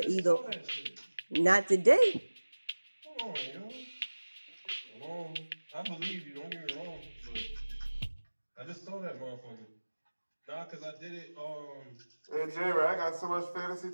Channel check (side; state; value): both; inverted; correlation -1.00